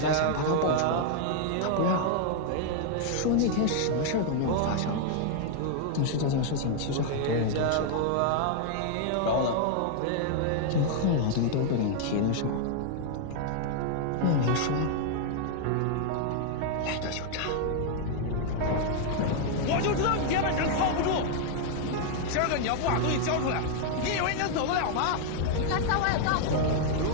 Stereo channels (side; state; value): both; different; correlation 0.00